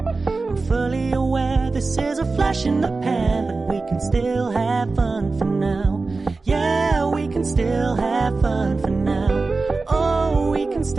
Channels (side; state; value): left; quieter; 3.8 dB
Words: I'm fully aware this is a flash in the pan, but we can still have fun for now. Yeah, we can still have fun for now. Oh, we can